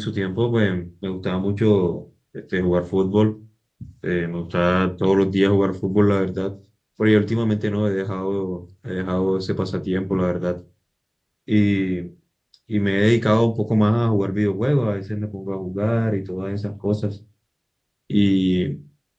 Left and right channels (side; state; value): both; identical; correlation 1.00